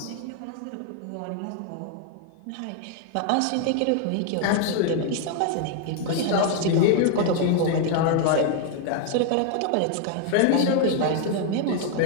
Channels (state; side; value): different; both; correlation 0.00